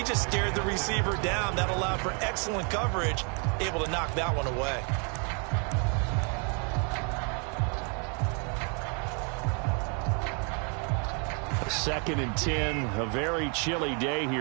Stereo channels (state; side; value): quieter; left; 37.5 dB